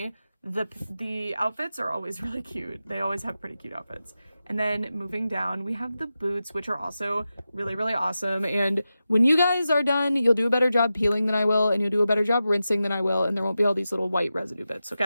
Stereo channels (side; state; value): both; inverted; correlation -0.92